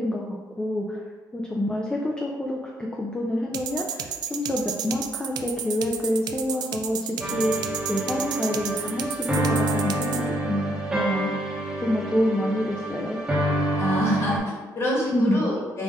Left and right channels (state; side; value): normal; both; correlation 0.72